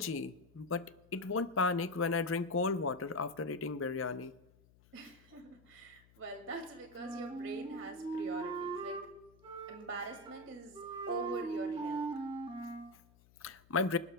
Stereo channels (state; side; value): noise; left; hum, 27 dB below the sound